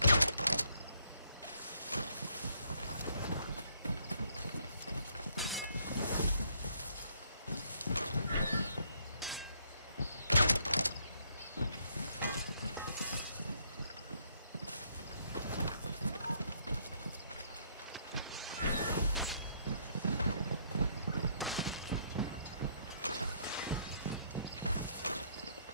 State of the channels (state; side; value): inverted; both; correlation -0.69